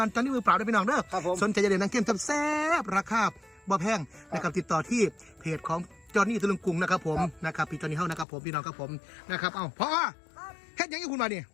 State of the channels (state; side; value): drops out; right; at 8.2 s